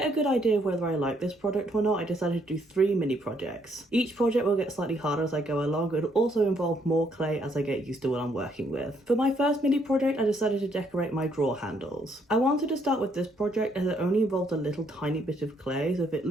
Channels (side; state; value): both; normal; correlation 0.70